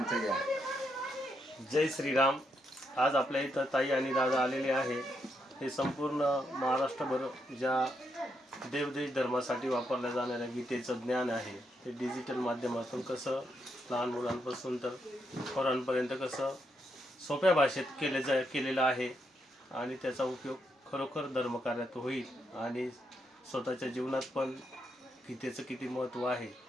जय श्रीराम. आज आपल्या इथं ताई आणि दादा आलेले आहे. हे संपूर्ण महाराष्ट्रभर ज्या देवदेश धर्मासाठी वापरल्या जाणाऱ्या गीतेचं ज्ञान आहे ते डिजिटल माध्यमातून कसं लहान मुलांपासून तर थोरांपर्यंत कसं सोप्या भाषेत केलेलं आहे आणि त्याचा उपयोग खरोखर धर्मकार्यात होईल आणि स्वतःच्या जीवनात पण गीतेचं किती महत्त्व आहे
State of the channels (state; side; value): normal; both; correlation 0.80